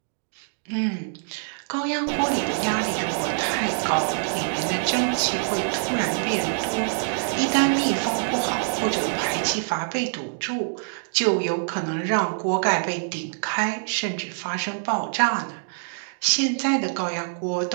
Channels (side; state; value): left; silent; digital silence